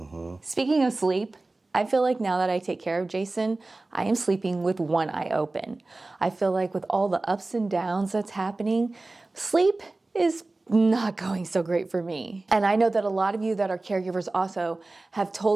Speaking of sleep, I feel like now that I take care of Jason, I am sleeping with one eye open. I feel like with all the ups and downs that's happening, sleep is not going so great for me. And I know that a lot of you that are caregivers also have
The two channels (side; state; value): left; quieter; 3.1 dB